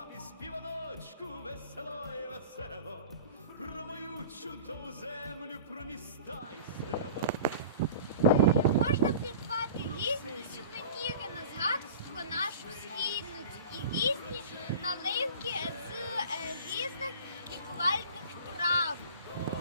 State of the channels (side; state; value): both; inverted; correlation -0.40